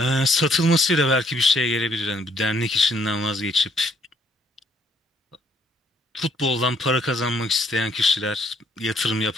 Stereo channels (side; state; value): both; normal; correlation 0.68